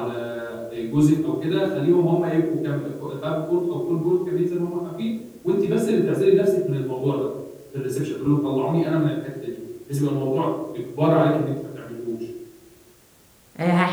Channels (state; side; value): identical; both; correlation 1.00